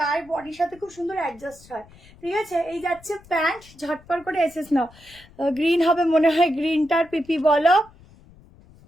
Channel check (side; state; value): left; noise; rumble, 25 dB below the sound